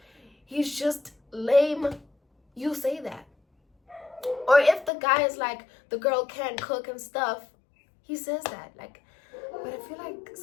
he's just lame, you say that. Or if the guy is like, the girl can't cook and stuff, he says that. Like, but I feel like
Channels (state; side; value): drops out; right; at 4.9 s